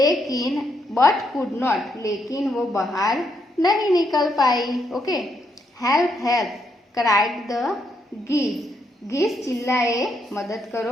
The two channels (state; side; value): normal; both; correlation 0.77